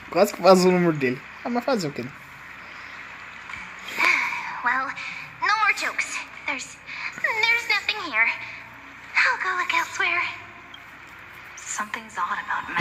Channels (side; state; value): both; identical; correlation 1.00